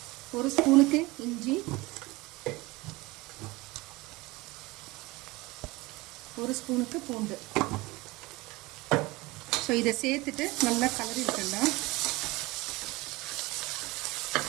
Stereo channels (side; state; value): left; quieter; 21.9 dB